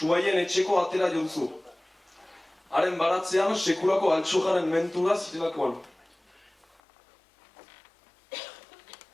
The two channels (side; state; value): right; drops out; at 6.8 s